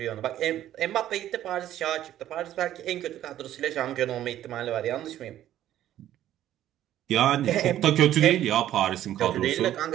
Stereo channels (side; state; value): left; quieter; 12.3 dB